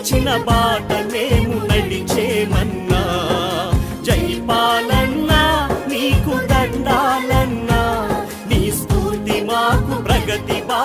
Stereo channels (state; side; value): identical; both; correlation 1.00